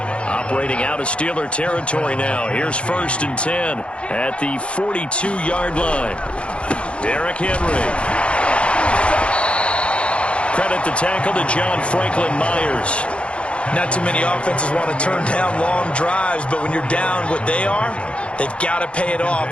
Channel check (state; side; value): late; right; 0.060 ms